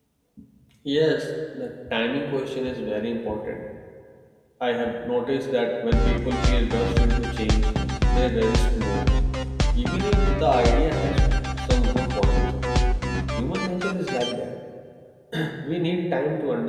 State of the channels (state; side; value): identical; both; correlation 1.00